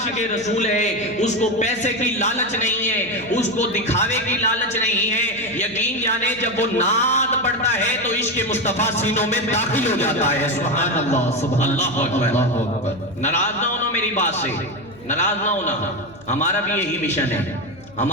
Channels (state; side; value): noise; left; hum, 24 dB below the sound